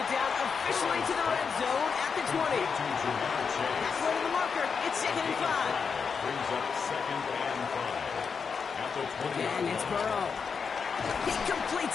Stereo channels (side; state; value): right; quieter; 5.8 dB